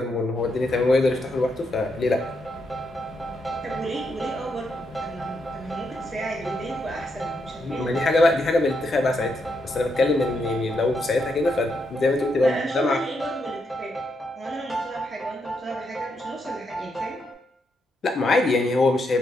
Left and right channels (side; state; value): both; normal; correlation 0.80